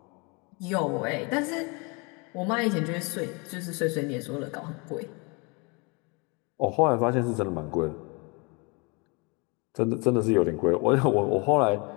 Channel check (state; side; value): quieter; right; 30.4 dB